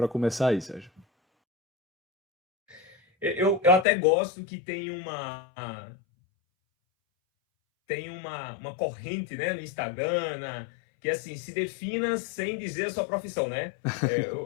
começar aí, Sérgio. Eu até gosto que tem uma corrente, né, no Instagram, que assim, se defina sem dizer a sua profissão, né?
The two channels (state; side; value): drops out; right; at 3.9 s